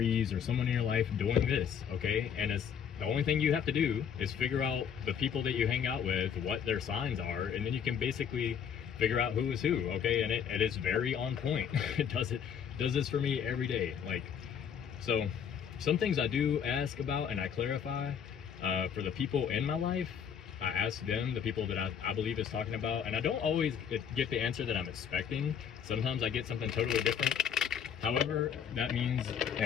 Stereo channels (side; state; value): right; quieter; 7.9 dB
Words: or someone in your life doing this, okay? And it's the only thing you have to do is figure out the people that you hang out with, what their signs are, and then you can basically figure out who is who, okay? And it is very on point. It does this for me every day. Like, so some things I do ask about and I clarify for the people in my life. I ask them, the people that I believe is talking about, and I don't always get the answer that I'm expecting. Sometimes I get something totally different. However, that means,